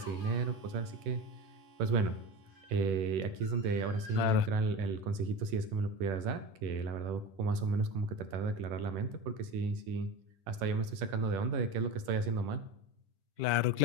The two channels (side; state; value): left; late; 10 ms